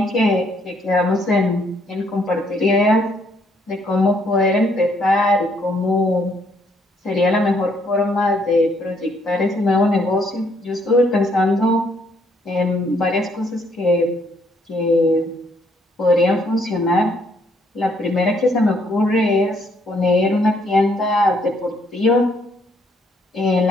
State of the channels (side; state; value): both; normal; correlation 0.69